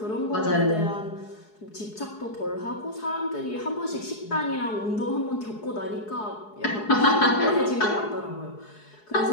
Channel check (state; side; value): late; right; 4.7 ms